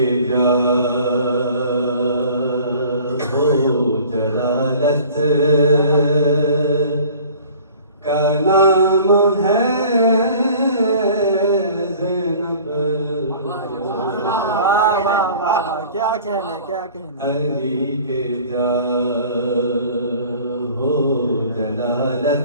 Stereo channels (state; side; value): inverted; both; correlation -0.47